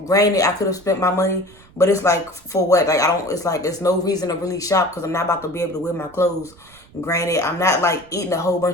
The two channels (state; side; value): noise; right; rumble, 26 dB below the sound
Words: Granted, I could have spent my money, but it's like, for what? Like, I don't. It's like, there's no reason to really shop because I'm not about to be able to wear my clothes. Granted, I'm not like eating a whole